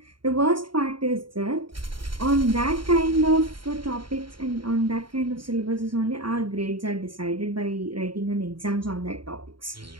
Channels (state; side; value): late; left; 0.73 ms